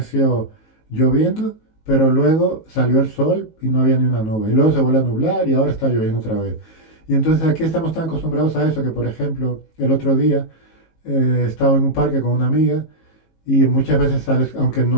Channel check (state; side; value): late; right; 19 ms